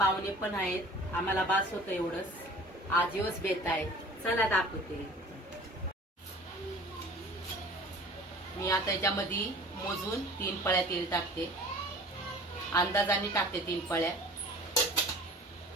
पण आहेत. आम्हाला बास होतं एवढंच. आज दिवस बेत आहे. चला दाखवते. मी आता याच्यामध्ये मोजून 3 पळ्या तेल टाकते. अंदाजाने टाकते 3 पळ्या.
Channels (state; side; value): normal; both; correlation 0.45